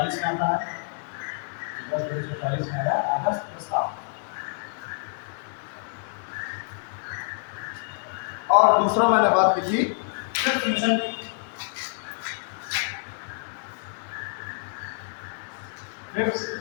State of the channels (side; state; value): right; silent; 57 dB below the other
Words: में आता है, अगस्त 1940 में आया अगस्त प्रस्ताव। और दूसरा मैंने बात की थी फिफ्थ मिशन की। फिफ्थ